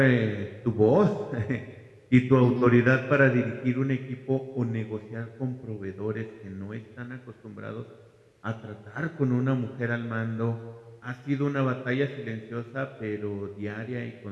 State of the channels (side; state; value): both; identical; correlation 1.00